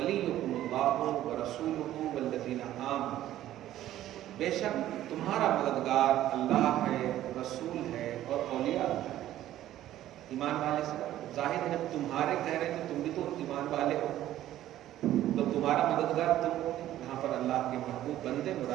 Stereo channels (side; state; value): left; quieter; 13.3 dB